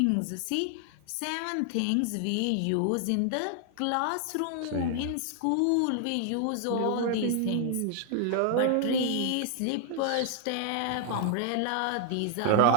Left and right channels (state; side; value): different; both; correlation 0.00